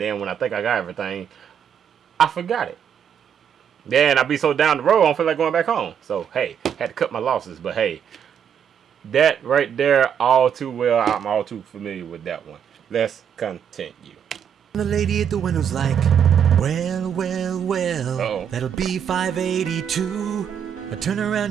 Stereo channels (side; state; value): left; quieter; 8.2 dB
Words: then when I think I got everything, I forgot it. Then I be so down the road, I don't feel like going back home. So, hey, had to cut my losses. But, hey, that right there, all too well. I'm all too familiar with that one. Let's continue. The lady at the window's like, well, Uh-oh. that'll be $5.82. I turn